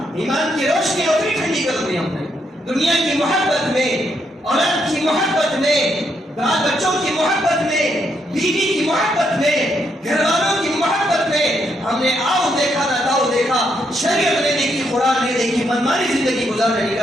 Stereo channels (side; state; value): both; normal; correlation 0.77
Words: ایمان کی روشنی اتنی ٹھنڈی کر دی ہم نے. دنیا کی محبت میں، اولاد کی محبت میں، بال بچوں کی محبت میں، بیوی کی محبت میں، گھر والوں کی محبت میں ہم نے آؤ دیکھا نہ داؤ دیکھا. شریعت نہیں دیکھی، قرآن نہیں دیکھی، منمانی زندگی گزارنے